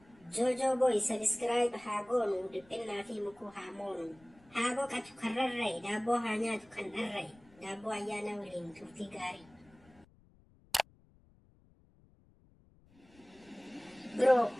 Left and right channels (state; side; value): noise; left; rumble, 28 dB below the sound